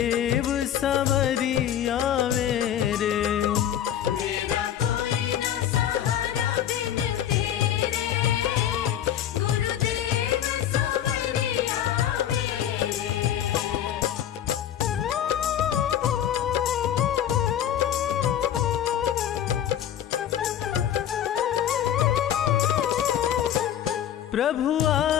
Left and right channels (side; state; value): right; quieter; 10.4 dB